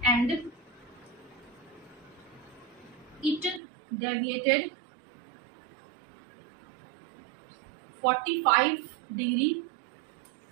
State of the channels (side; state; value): left; drops out; at 3.6 s